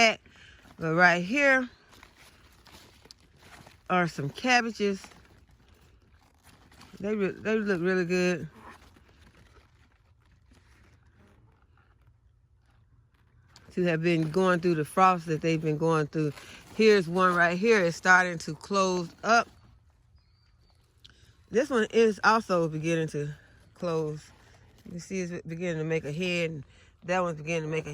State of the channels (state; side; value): identical; both; correlation 1.00